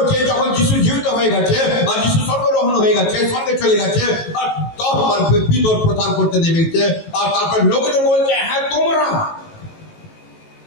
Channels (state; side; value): late; right; 18 ms